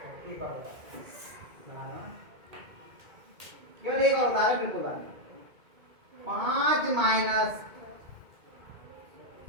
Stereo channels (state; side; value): late; left; 2.3 ms